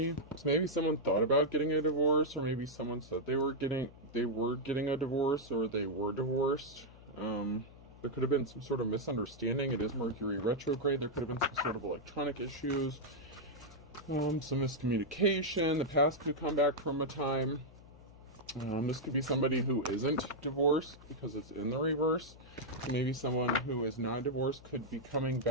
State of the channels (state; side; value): noise; left; hum, 20 dB below the sound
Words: So maybe someone thought about getting a divorce, or maybe someone said they were getting a divorce, or they were divorced. There could have been some sort of misunderstanding. It is Mercury retrograde. There could have been some sort of electronic issues, some miscommunication. The past could come back from a time. This could be somebody who isn't divorced because it's in the reverse. Maybe someone who is not divorced could be coming